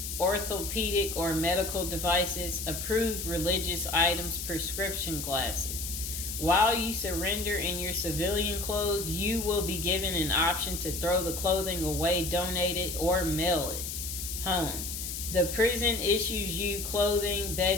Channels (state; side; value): noise; left; hiss, 5 dB below the sound